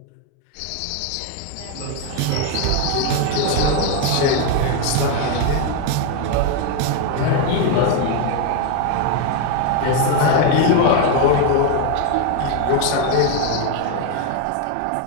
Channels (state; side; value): different; both; correlation 0.01